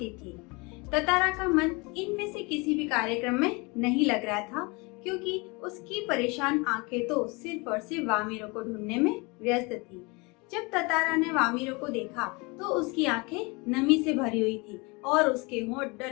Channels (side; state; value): right; quieter; 27.5 dB